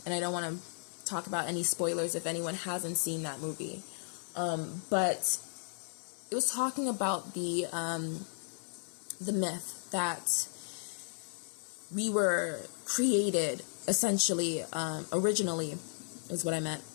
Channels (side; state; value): right; silent; digital silence